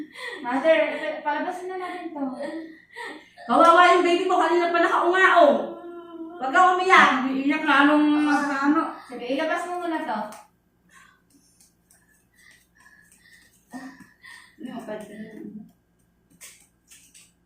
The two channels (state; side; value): identical; both; correlation 1.00